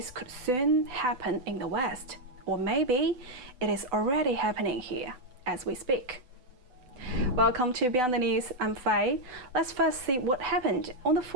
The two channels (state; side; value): late; left; 8.3 ms